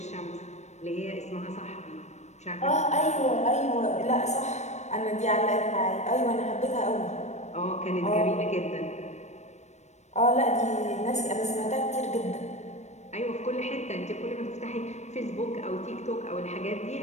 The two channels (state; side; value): late; right; 0.33 ms